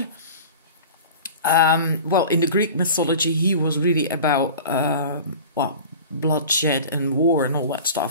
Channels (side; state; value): both; inverted; correlation -0.38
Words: Well, in the Greek mythology, he was really about, well, bloodshed and war and all that